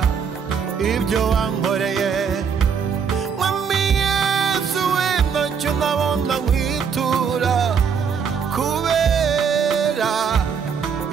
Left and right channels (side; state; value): left; quieter; 6.6 dB